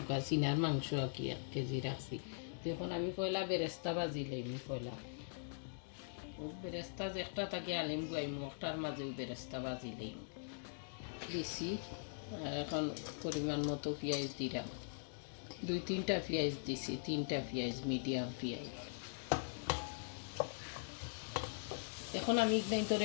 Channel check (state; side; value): silent; right; digital silence